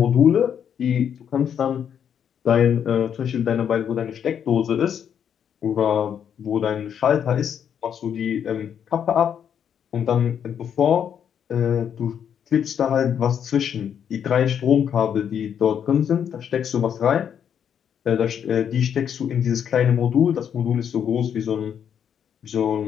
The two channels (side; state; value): right; quieter; 8.4 dB